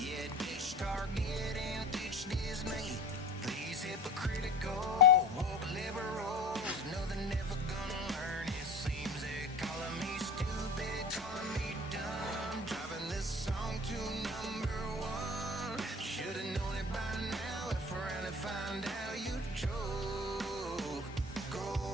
ditch Target and ditch Disney. These hypocritical woke liberals know they're never gonna learn. It seems they're calling me stupid, calling me dumb. Driving this song to #1. Should've known it by now. If around and find out you choke. Go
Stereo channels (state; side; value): normal; both; correlation 0.38